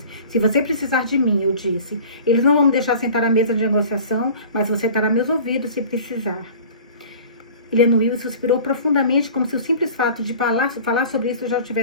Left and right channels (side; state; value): both; inverted; correlation -0.43